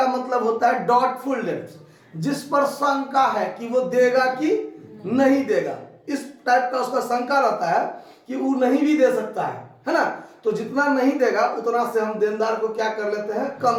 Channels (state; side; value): identical; both; correlation 1.00